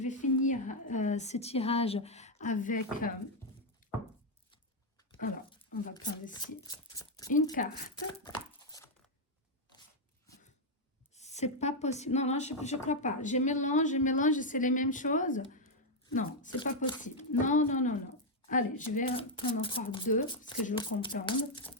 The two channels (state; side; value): normal; both; correlation 0.00